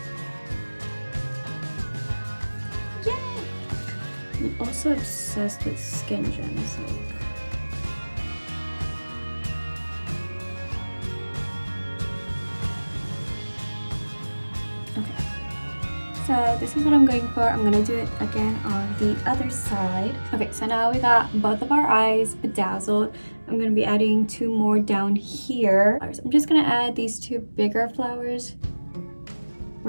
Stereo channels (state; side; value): inverted; both; correlation -1.00